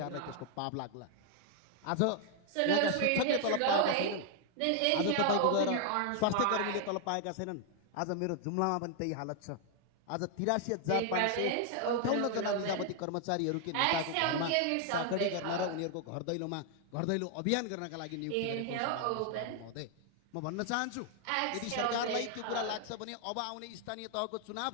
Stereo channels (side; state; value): both; different; correlation 0.00